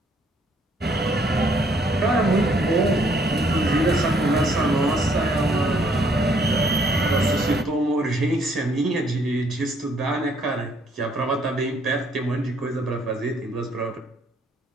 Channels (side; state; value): both; normal; correlation 0.66